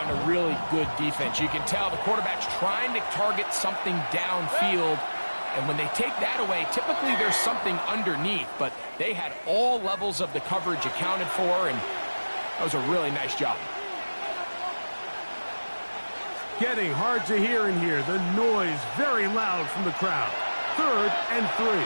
to really good defense. You can tell the quarterback's trying to target something downfield, and when they take that away, typically there's something underneath, but they had all levels of the coverage accounted for, and that was a really nice job. Getting hard to hear in here. The noise very loud from the crowd. 3rd and 3.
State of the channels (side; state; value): both; inverted; correlation -1.00